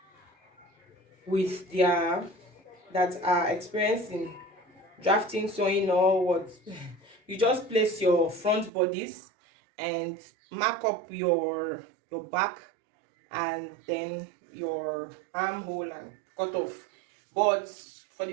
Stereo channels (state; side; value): drops out; left; at 8.7 s